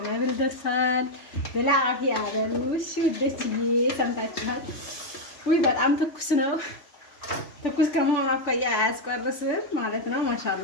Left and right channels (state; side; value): late; right; 3.4 ms